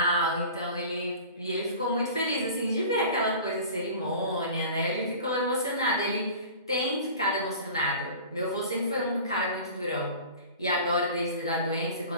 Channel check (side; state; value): both; inverted; correlation -0.40